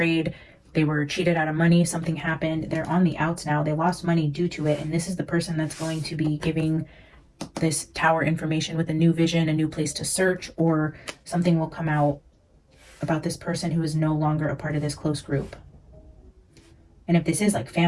They were cheated out of money. Something happened. They're on the outs now. They lost money due to it. And this is the person that's going to be giving this tower information with a new vision, a new place to search, or something will come out about this person who is no longer a part of this close group. And if this is like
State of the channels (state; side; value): identical; both; correlation 1.00